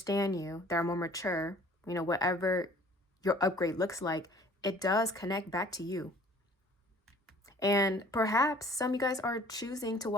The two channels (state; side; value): normal; both; correlation 0.52